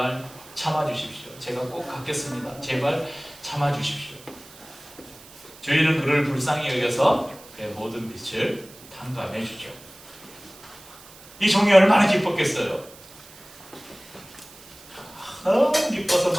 참아주십시오. 제가 꼭 갚겠습니다. 제발 참아주십시오. 주인은 그를 불쌍히 여겨서 그의 모든 빚을 탕감해 주죠. 이 종이 얼마나 기뻤겠어요. 너무 기뻐서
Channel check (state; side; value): noise; right; hiss, 20 dB below the sound